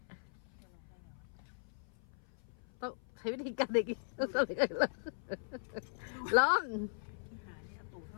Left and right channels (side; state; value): right; silent; 52 dB below the other